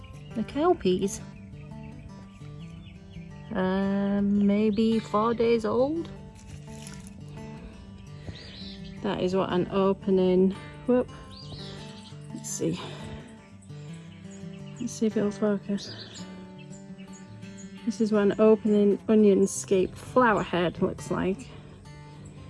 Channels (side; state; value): both; identical; correlation 1.00